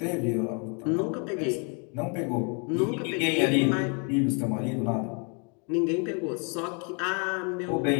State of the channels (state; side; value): quieter; right; 36.4 dB